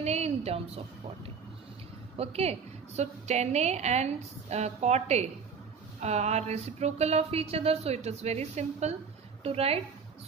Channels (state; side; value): quieter; left; 5.9 dB